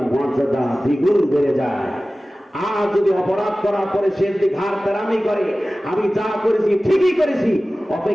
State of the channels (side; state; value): both; normal; correlation 0.97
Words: মর্যাদা দ্বিগুণ বেড়ে যায়। আর যদি অপরাধ করার পরে সে যদি ঘাড় তেরামি করে, আমি যা করেছি ঠিকই করেছি,